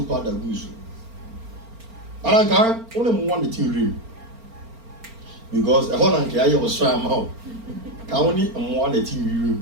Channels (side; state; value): left; late; 4.4 ms